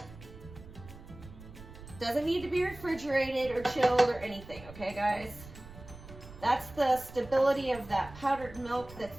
Doesn't need to be refrigerated or chilled or anything, okay guys? That's the stability of that powdered milk that's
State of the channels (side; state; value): right; noise; rumble, 17 dB below the sound